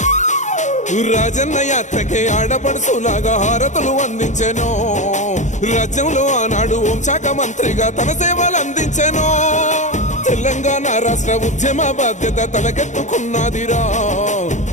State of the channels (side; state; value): right; late; 0.35 ms